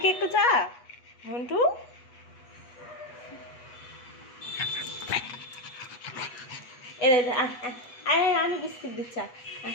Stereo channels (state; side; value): late; right; 8.3 ms